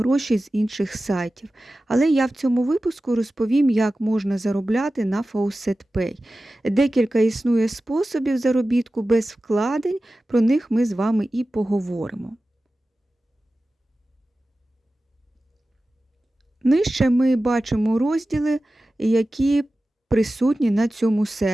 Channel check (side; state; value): both; normal; correlation 0.95